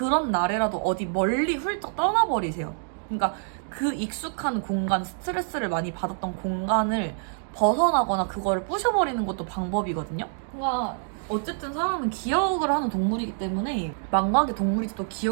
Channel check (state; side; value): silent; left; 61 dB below the other